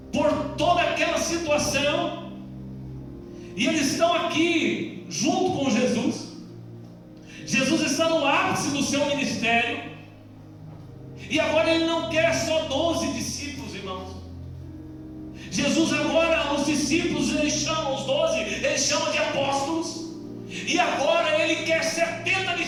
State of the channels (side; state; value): both; identical; correlation 1.00